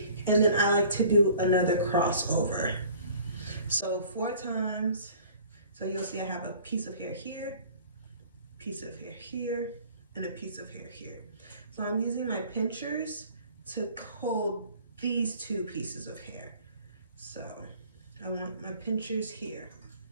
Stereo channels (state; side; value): inverted; both; correlation -0.50